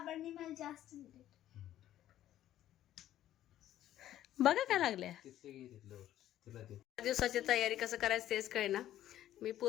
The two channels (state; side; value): quieter; right; 12.6 dB